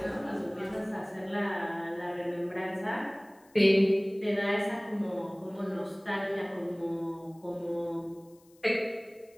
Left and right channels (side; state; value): left; noise; hiss, 30 dB below the sound